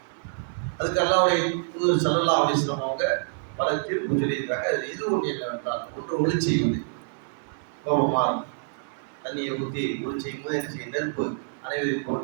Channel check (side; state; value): left; silent; digital silence